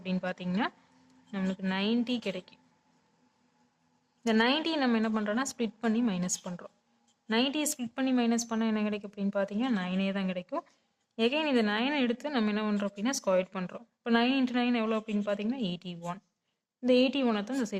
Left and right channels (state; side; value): identical; both; correlation 1.00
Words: பார்த்தீங்கன்னா, நம்மளுக்கு 90 கிடைக்கும். இந்த 90 நம்ம என்ன பண்ணுறோன்னா ஸ்ப்ளிட் பண்ணி மைனஸ் பண்ணுறோம். 90 ஸ்ப்ளிட் பண்ணி மைனஸ் பண்ணால் என்ன கிடைக்கும் அப்படின்னு பார்த்தீங்கன்னா 9 தான் கிடைக்கும். எகைன் இந்த 9 எடுத்து நம்ம என்ன பண்ணுறோம் அப்படின்னா ஸ்கொயர் பண்ணுறோம். இப்போ 9 × 9 எவ்வளோ அப்படின்னு பார்த்தீங்கன்னா 81. இந்த 81 தான் இந்த